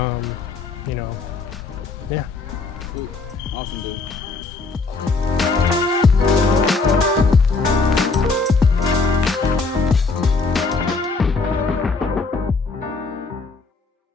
know, yeah. Cool. Awesome, dude.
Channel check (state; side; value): quieter; right; 4.0 dB